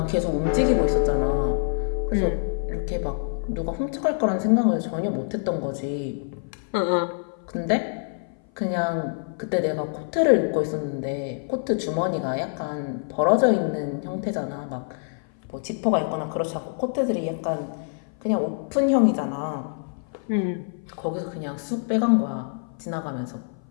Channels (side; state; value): right; silent; 56 dB below the other